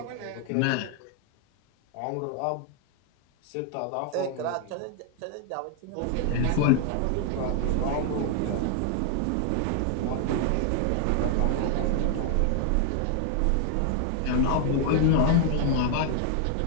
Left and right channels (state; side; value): different; both; correlation 0.00